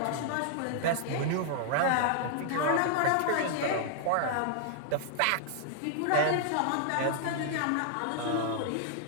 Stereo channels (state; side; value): different; both; correlation -0.01